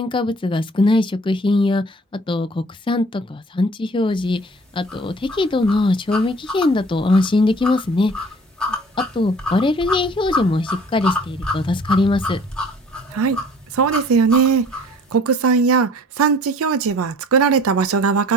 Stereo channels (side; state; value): both; normal; correlation 0.50